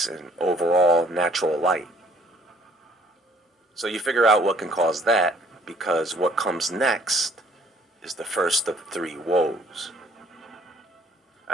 in overall natural light. So you figure out what can cause that, because what comes next is the first of three woes.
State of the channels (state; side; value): normal; both; correlation 0.59